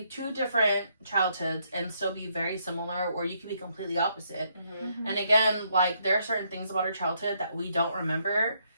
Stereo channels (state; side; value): inverted; both; correlation -0.73